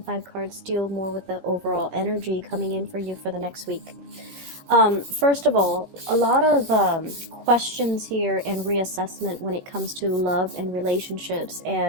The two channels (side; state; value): left; late; 17 ms